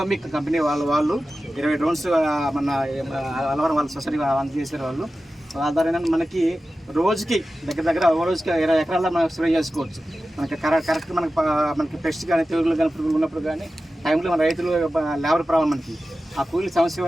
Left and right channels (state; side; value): normal; both; correlation 0.94